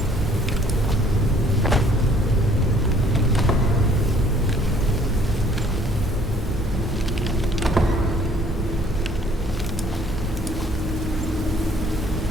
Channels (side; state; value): both; normal; correlation 0.59